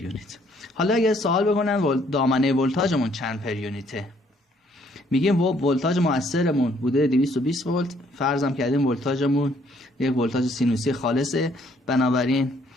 حالا اگر سوال بکنن دامنه ولتاژمون چند پر یونیته، میگیم ولتاژ مؤثرمون بوده 220 ولت، فرضم کردیم ولتاژمون یک ولتاژ سینوسی خالصه، بنابراین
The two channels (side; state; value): both; normal; correlation 0.65